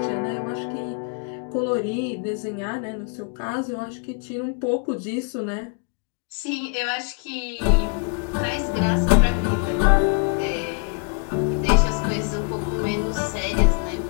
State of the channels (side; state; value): right; quieter; 37.6 dB